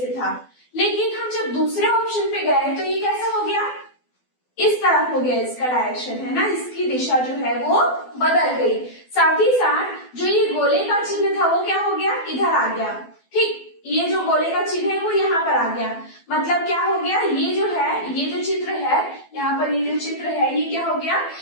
था। लेकिन हम जब दूसरे ऑप्शन पे गए तो ये कैसा हो गया, इस तरफ हो गया, इसका डायरेक्शन है ना, इसकी दिशा जो है वो बदल गई। साथ ही साथ जो ये गोले का चिन्ह था वो क्या हो गया, इधर आ गया। ठीक, ये जो गोले का चिन्ह है वो यहाँ पर आ गया, मतलब क्या हो गया, ये जो है, ये जो चित्र है यहाँ पर, ये जो चित्र है ये क्या हो गया,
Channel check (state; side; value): late; right; 12 ms